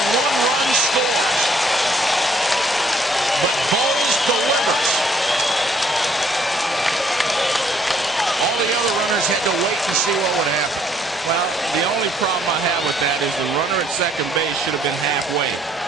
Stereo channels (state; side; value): normal; both; correlation 0.65